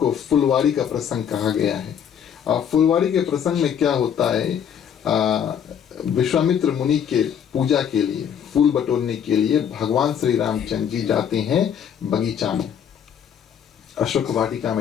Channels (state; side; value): quieter; right; 8.4 dB